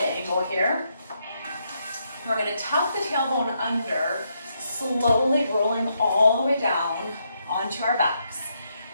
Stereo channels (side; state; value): both; inverted; correlation -0.78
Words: angle here. We're going to tuck the tailbone under, slowly rolling all the way down onto our backs.